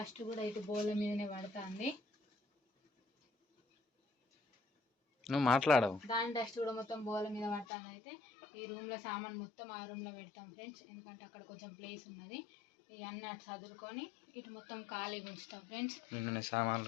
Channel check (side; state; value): right; drops out; at 7.7 s